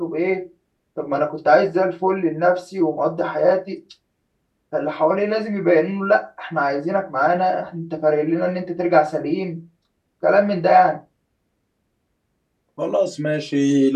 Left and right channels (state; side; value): identical; both; correlation 1.00